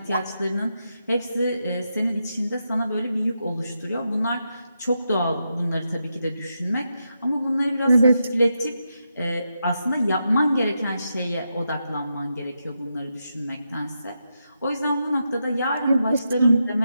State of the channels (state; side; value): inverted; both; correlation -0.85